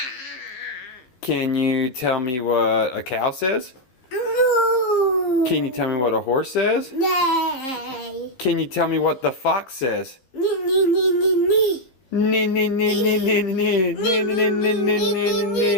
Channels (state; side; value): late; right; 16 ms